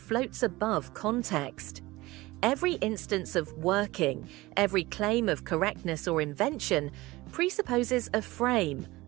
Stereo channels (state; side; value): quieter; left; 19.9 dB